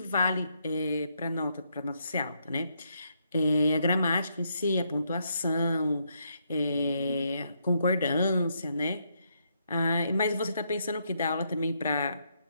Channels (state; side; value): inverted; both; correlation -0.77